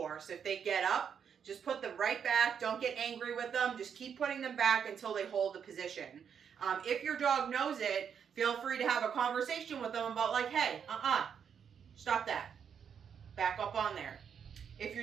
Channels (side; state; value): left; quieter; 7.5 dB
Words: If they get up, just put them right back. Don't get angry with them. Just keep putting them back until they hold the position. If your dog knows it, feel free to have a conversation with them about like, hey, stop that. Back up on there. If